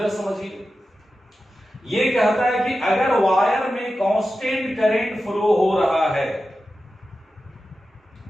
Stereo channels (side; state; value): both; normal; correlation 0.92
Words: समझिए। ये कहता है कि अगर वायर में कांस्टेंट करंट फ्लो हो रहा है,